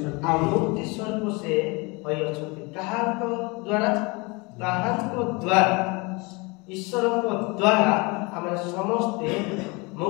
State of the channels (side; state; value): right; quieter; 27.3 dB